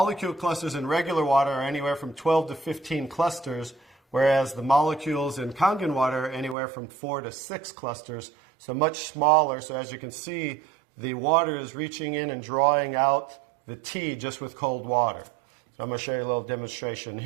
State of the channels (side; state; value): left; drops out; at 6.6 s